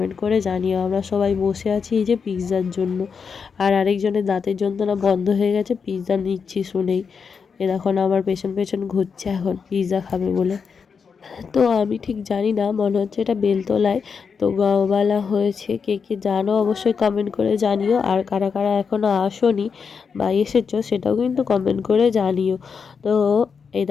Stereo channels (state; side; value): quieter; right; 5.9 dB